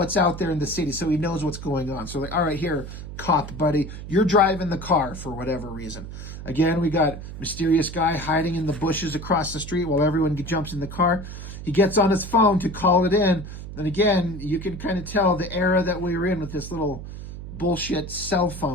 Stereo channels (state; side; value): noise; right; hum, 10 dB below the sound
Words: out there in the city so he knows what's going on. So like, all right, here, cop buddy, you're driving the car for whatever reason. Again, we got mysterious guy hiding in the bushes across the street while everyone jumps in the car. He gets on his phone to call it in. And again, you can kind of tell the era that we were in with this little bullshit cell